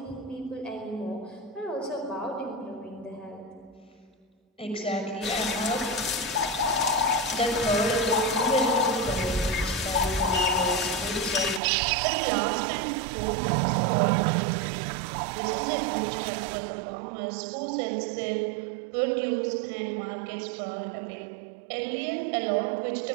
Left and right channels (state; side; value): drops out; left; at 11.6 s